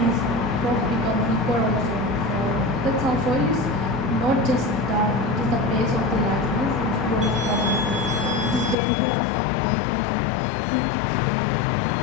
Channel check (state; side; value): drops out; right; at 8.8 s